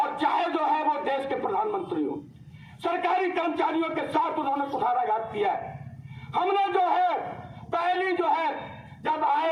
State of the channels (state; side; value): identical; both; correlation 1.00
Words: चाहे जो है वो देश के प्रधानमंत्री हो। सरकारी कर्मचारियों के साथ उन्होंने कुठाराघात किया है। हमने जो है पहली जो है जब